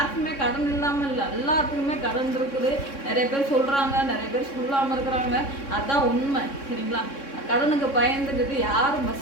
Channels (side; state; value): right; late; 3.6 ms